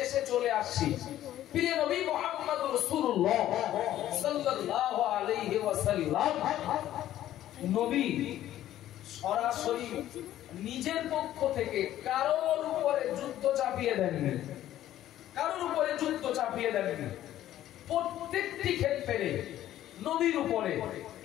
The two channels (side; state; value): right; quieter; 12.9 dB